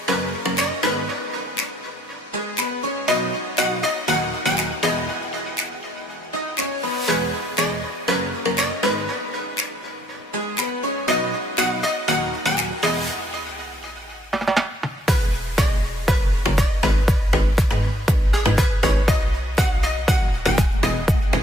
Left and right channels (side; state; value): both; normal; correlation 0.70